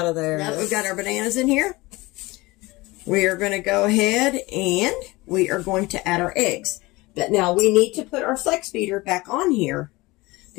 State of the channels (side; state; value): right; quieter; 21.8 dB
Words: of there. Now that we've got our bananas in here, we are going to go ahead and we are going to add our eggs. But now we need to put our flex beater back on here